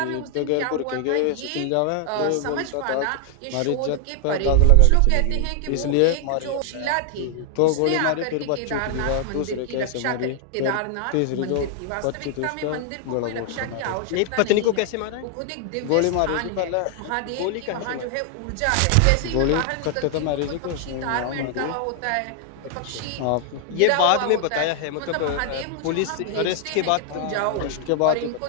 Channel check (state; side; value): different; both; correlation 0.00